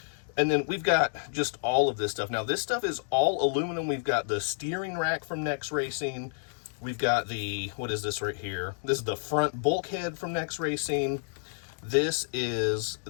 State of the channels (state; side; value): silent; right; digital silence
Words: And then we've got just all of this stuff. Now, this stuff is all aluminum. We've got the steering rack from Next Racing. We've got the, what is this right here? This is the front bulkhead from Next Racing. This is